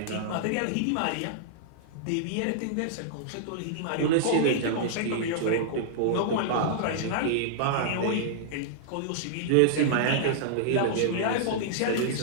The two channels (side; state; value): both; different; correlation -0.02